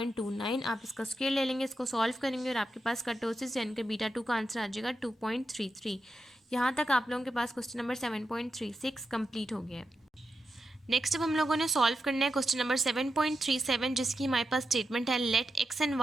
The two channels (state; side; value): normal; both; correlation 0.88